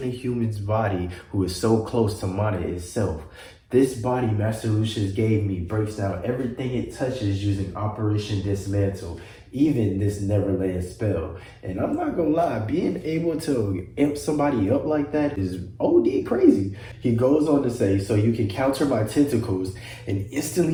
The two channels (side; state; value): both; identical; correlation 1.00